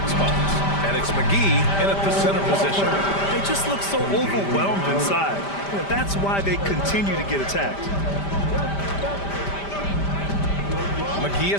spots. And it's McGee in at the center position. They just look so overwhelmed inside. That's why they continue to get attacked. McGee a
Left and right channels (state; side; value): late; right; 5.1 ms